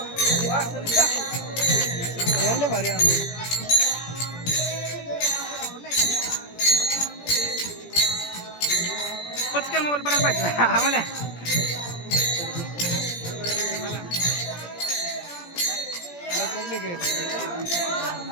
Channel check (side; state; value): right; late; 17 ms